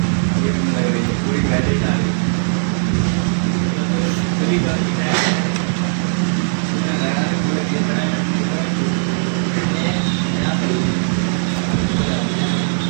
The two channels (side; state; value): left; silent; digital silence